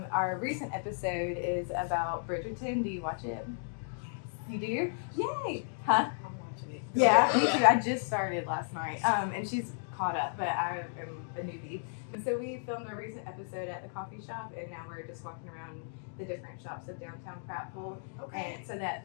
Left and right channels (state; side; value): silent; right; digital silence